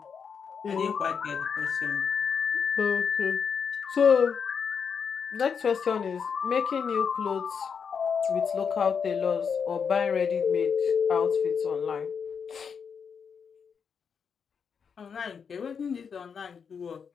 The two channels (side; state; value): right; quieter; 6.4 dB